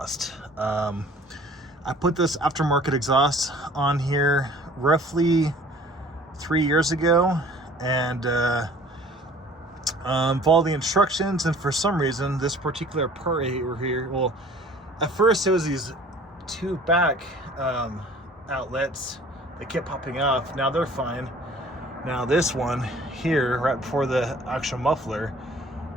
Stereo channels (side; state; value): both; normal; correlation 0.50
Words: I put this aftermarket exhaust on here roughly 3 years ago, and followed the instructions, and for some reason this particular part right here, well, at first it was these two back outlets that kept popping off. Now they're fine. Now this one here, right before the actual muffler,